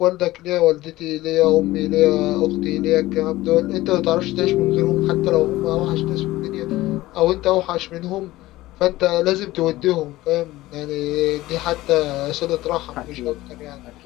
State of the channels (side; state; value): right; quieter; 17.4 dB